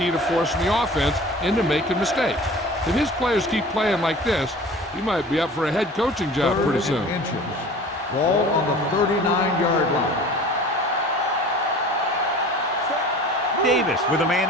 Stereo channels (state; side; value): normal; both; correlation 0.42